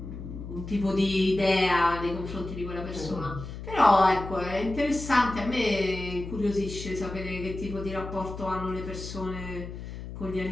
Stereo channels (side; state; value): left; noise; hum, 10 dB below the sound